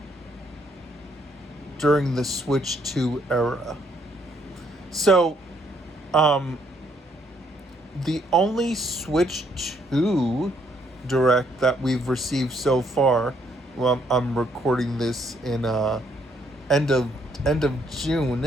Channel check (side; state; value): both; normal; correlation 0.70